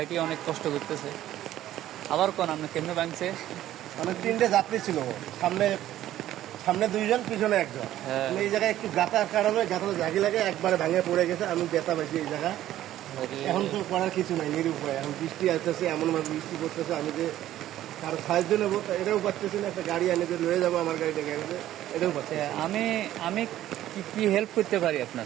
অনেক কষ্ট করতেছে। আবার কোন আপনি কেমনে ভাঙছে? মানে 3টে যাত্রী ছিল, সামনে সামনে 2জন, পিছনে 1জন। হ্যাঁ। এই জায়গায় একটু গাতার কারণে গাতাটা জাগি লাগে, একবারে ভাঙে পড়ে গেছে। আমি ব্যথা পাইছি এই জায়গায়। এখন তো করার কিছু নাই, নিরুপায়। এখন বৃষ্টি আসতেছে, এমনভাবে বৃষ্টি পড়তেছে, আমি যে কারো সাহায্য নেবো এটাও পাচ্ছি না। একটা গাড়ি এনে যে লয়ে যাবো আমার গাড়িটা গ্যারেজে, এটাও পাচ্ছি না। আমি আমি কি হেল্প করতে পারি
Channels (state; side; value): quieter; left; 13.2 dB